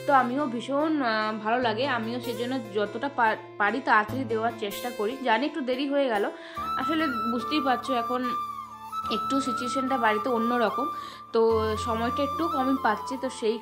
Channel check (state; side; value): identical; both; correlation 1.00